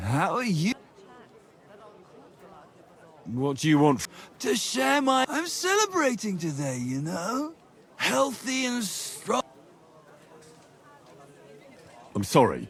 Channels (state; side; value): identical; both; correlation 1.00